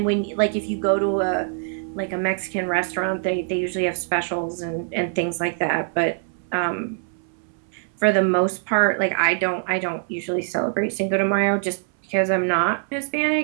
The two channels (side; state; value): left; silent; 63 dB below the other